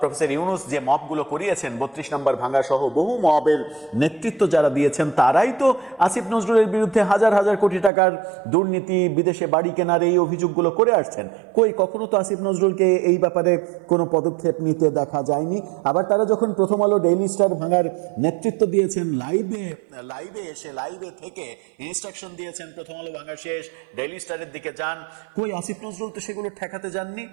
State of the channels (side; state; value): left; drops out; at 7.9 s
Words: ইউনুস যে মবগুলো করিয়েছেন, 32 নম্বর ভাঙা সহ বহু মবের নেতৃত্ব যারা দিয়েছেন, তারাই তো আসিফ নজরুলের বিরুদ্ধে হাজার হাজার কোটি টাকার দুর্নীতি, বিদেশে বাড়ি কেনার এই অভিযোগগুলো করে আসছেন। কখনো তো আসিফ নজরুলকে এই ব্যাপারে কোনো পদক্ষেপ নিতে দেখা যায়নি। আবার তারা যখন প্রথম আলো ডেইলি স্টার ভাঙার নেতৃত্ব দিয়েছেন, লাইভে থেকে ইনস্ট্রাকশন দিয়েছেন প্রথম আলো ভাঙা শেষ, ডেইলি স্টারের দিকে যান, আসিফ নজরুল তো সেগুলো ঠেকাতে যাননি।